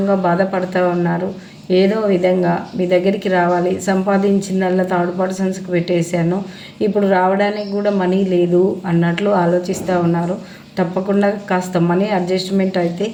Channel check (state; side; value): identical; both; correlation 1.00